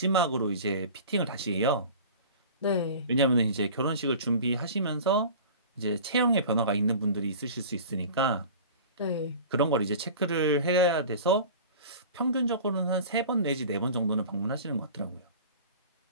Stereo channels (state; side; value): inverted; both; correlation -0.39